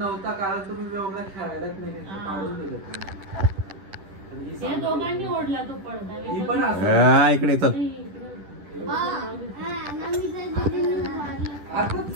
कारण तुम्ही व्योमला खेळायलाच नाही घेतलं, हा. काढून दिलं तुम्ही. या दोघांनी ओढला तो पडदा. ही पण असं इकडे चल. आता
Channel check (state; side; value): late; left; 10 ms